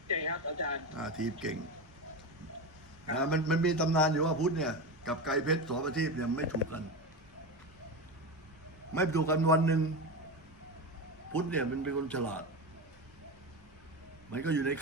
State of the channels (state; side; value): normal; both; correlation 0.20